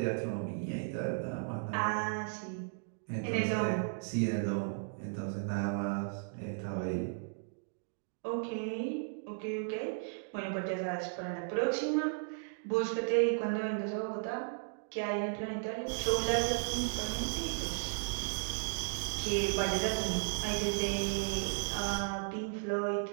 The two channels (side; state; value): left; silent; digital silence